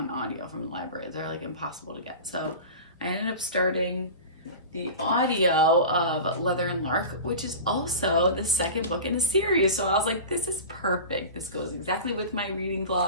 audio from the library. They're like impossible to get. So I ended up starting the audio of Leather and Lark, which is also the second book in the series. So I was like, this is perfect. This goes exactly with my reading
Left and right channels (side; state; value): both; inverted; correlation -0.31